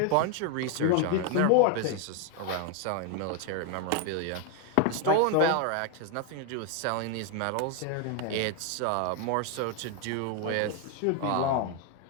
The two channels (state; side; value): different; both; correlation 0.00